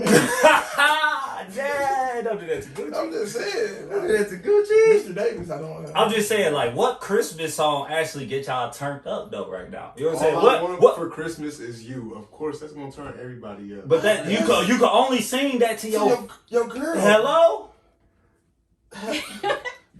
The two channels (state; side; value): identical; both; correlation 1.00